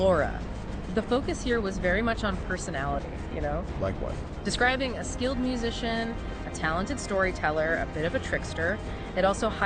The focus here was very much on personality, Like what? Describing a skilled musician, a talented storyteller, a bit of a trickster. It also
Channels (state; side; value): identical; both; correlation 1.00